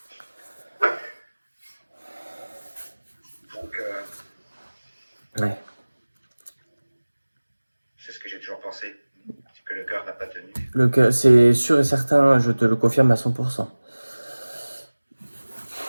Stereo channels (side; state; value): both; inverted; correlation -1.00